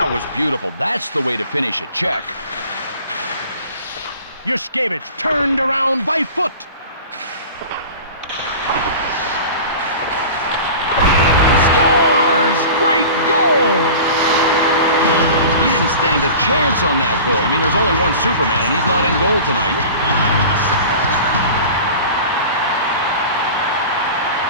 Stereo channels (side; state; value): both; inverted; correlation -0.38